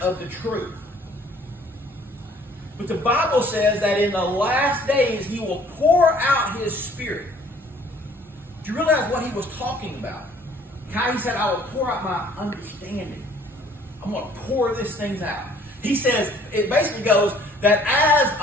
the truth. But the Bible says that in the last days He will pour out His Spirit. Do you realize what He was talking about? How He said, I will pour out my understanding. I'm going to pour these things out. He says, it basically goes that as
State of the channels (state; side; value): normal; both; correlation 0.57